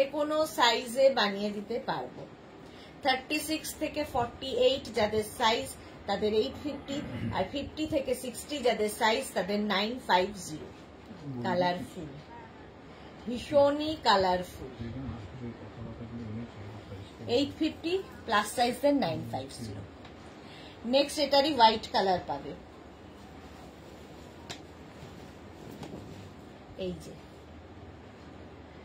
কোনো সাইজে বানিয়ে দিতে পারবো। 36 থেকে 48 যাদের সাইজ তাদের 850, আর 50 থেকে 60 যাদের সাইজ তাদের 950। কালারফুল, ভীষণই কালারফুল। 850 প্লাস সাইজের 950। নেক্সট এটারই হোয়াইট কালার পাবে, এই যে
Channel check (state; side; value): identical; both; correlation 1.00